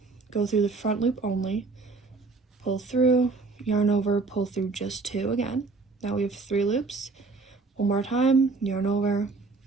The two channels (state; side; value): quieter; left; 4.0 dB